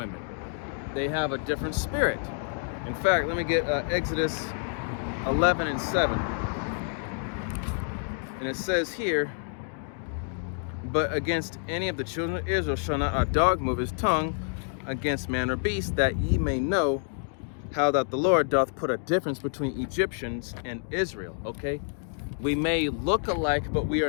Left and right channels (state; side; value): silent; right; 59 dB below the other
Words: They have a different spirit. In fact, let me get Exodus 11 and 7. And it says here, but against any of the children of Israel shall not a dog move his tongue against man or beast, that ye may know how that the Lord doth put a difference between Egyptians and Israel. Okay, we may look alike, but we